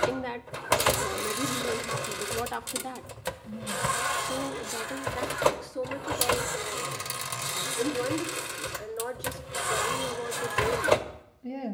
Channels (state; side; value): identical; both; correlation 1.00